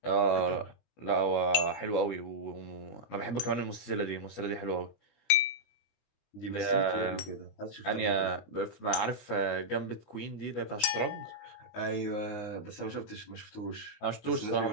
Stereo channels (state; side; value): late; right; 20 ms